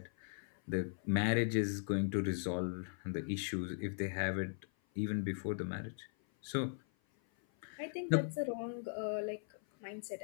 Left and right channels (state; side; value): silent; right; 52 dB below the other